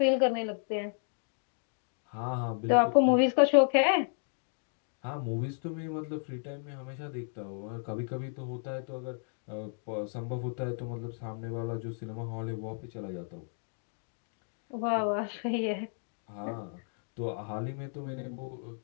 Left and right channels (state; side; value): silent; right; 56 dB below the other